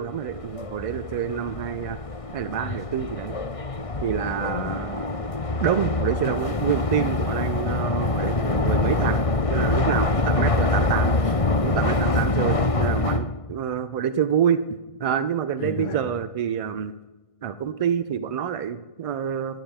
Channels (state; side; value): late; right; 1.6 ms